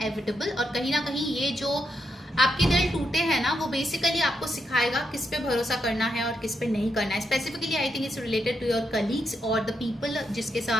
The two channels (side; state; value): both; normal; correlation 0.82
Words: और कहीं ना कहीं ये जो आपके दिल टूटे हैं ना, वो बेसिकली आपको सिखाएगा किस पे भरोसा करना है और किस पे नहीं करना है। Specifically I think it's related to your colleagues और द पीपल जिसके